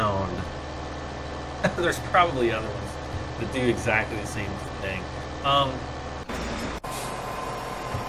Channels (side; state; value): both; identical; correlation 1.00